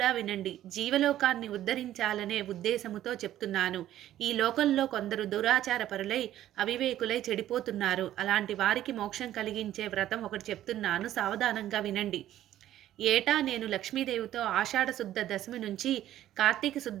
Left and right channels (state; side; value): quieter; left; 12.8 dB